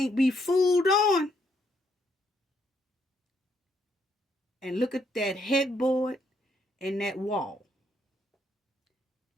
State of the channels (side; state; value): both; normal; correlation 0.73